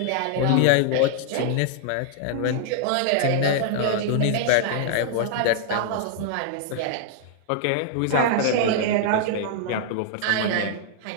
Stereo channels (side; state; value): both; different; correlation -0.01